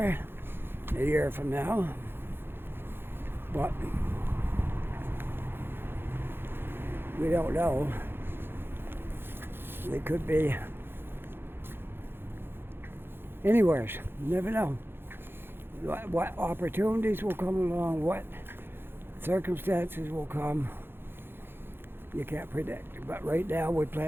a year from now, but we don't know. We could be anywhere. You never know. What opportunities will come along, what circumstances will come, you can't predict. But right now we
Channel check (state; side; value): late; left; 0.10 ms